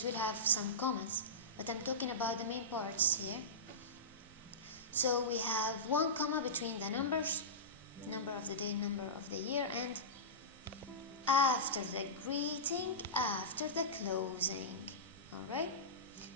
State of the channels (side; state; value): both; normal; correlation -0.18